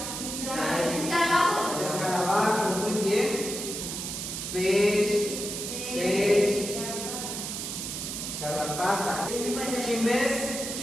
Escarabajo, muy bien. Pech. Garrapata. Chimes.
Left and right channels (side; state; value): right; noise; hiss, 5 dB below the sound